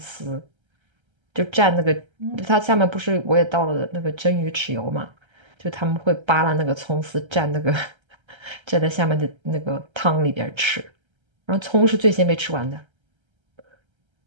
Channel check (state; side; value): late; left; 1.3 ms